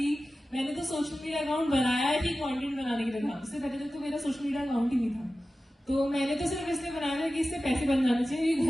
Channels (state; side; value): normal; both; correlation 0.95